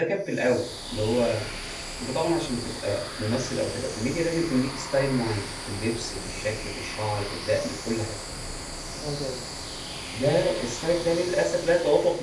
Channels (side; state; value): both; identical; correlation 1.00